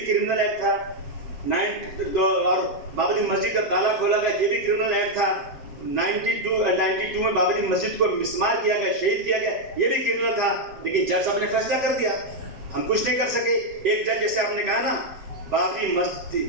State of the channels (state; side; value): late; left; 7.7 ms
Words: क्रिमिनल एक्ट था। और बाबरी मस्जिद का ताला खोला गया, ये भी क्रिमिनल एक्ट था। 92 में बाबरी मस्जिद को मिसमार किया गया, शहीद किया गया, ये भी क्रिमिनल था। लेकिन जज साहब ने फैसला कर दिया, हम कुछ नहीं कर सके। एक जज, जैसे आपने कहा ना, बाबरी